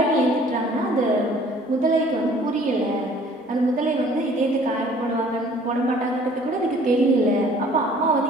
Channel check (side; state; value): both; normal; correlation 0.54